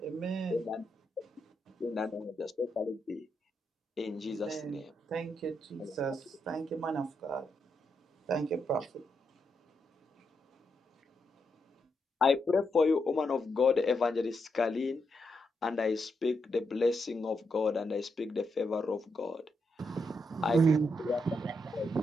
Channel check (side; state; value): both; normal; correlation 0.82